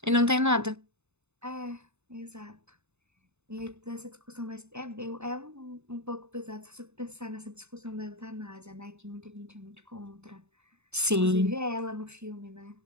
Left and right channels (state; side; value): late; left; 0.81 ms